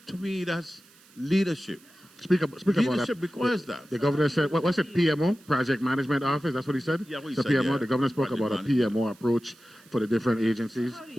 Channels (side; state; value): right; noise; hiss, 27 dB below the sound